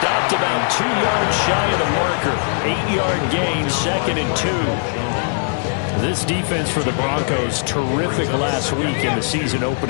about 2 yards shy of the marker. 8-yard gain, 2nd and 2. This defense for the Broncos, terrific last week in the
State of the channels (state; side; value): silent; right; 66 dB below the other